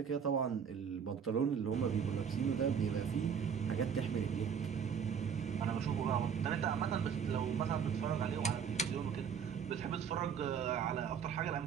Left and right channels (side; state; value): left; quieter; 7.3 dB